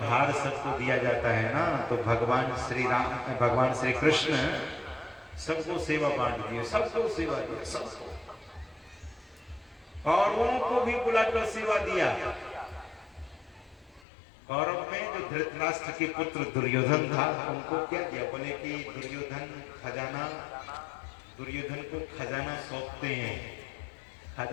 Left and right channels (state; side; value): drops out; right; at 14.1 s